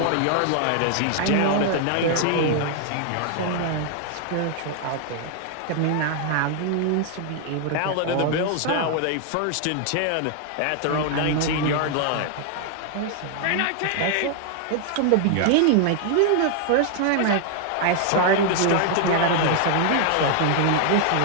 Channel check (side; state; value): both; different; correlation 0.00